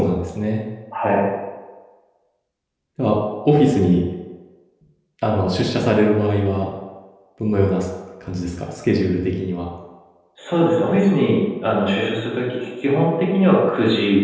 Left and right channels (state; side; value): identical; both; correlation 1.00